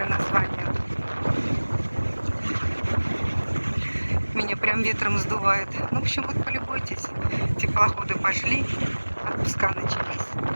название. Меня прям ветром сдувает. Ну, в общем, вот полюбуйтесь. Теплоходы пошли, отпуска начались.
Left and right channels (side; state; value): both; inverted; correlation -1.00